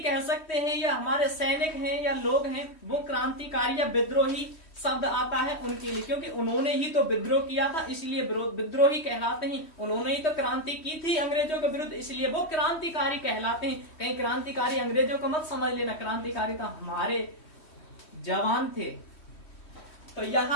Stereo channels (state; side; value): late; right; 3.1 ms